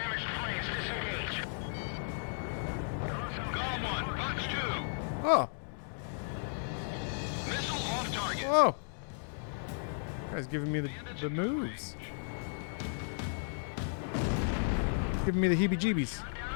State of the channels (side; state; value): right; silent; digital silence